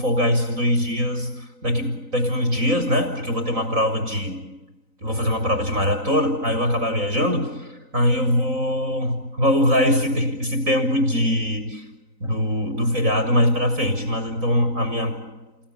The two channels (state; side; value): late; left; 3.9 ms